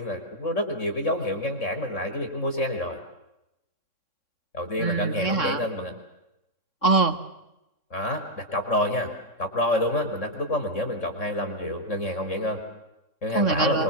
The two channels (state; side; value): late; right; 3.6 ms